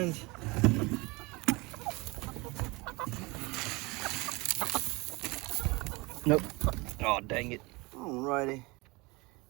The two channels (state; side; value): quieter; left; 25.0 dB